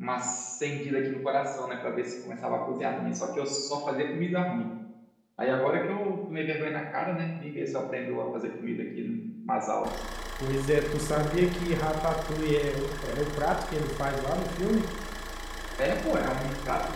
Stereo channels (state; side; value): identical; both; correlation 1.00